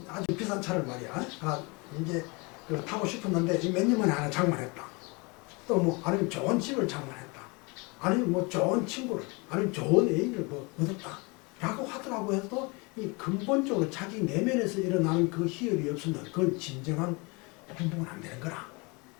아주 비싼 차를 말이야 하나 이제 타고 싶었는데 몇 년 만에 하나 장만했다. 또 뭐 아니면 좋은 집을 장만했다. 아니면 뭐 좋은 친구를 아니면 좋은 애인을 뭐 얻었다. 라고 하더라고 해도 이 근본적으로 자기 내면에서 일어나는 그 희열이 없으면 그건 진정한 행복은 안 되는 거라.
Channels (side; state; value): right; quieter; 28.6 dB